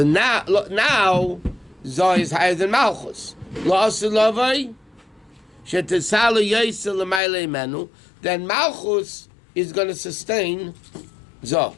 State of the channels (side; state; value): right; drops out; at 7.2 s